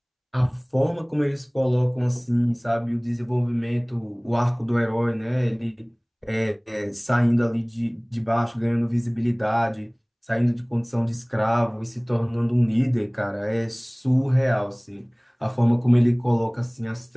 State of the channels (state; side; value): identical; both; correlation 1.00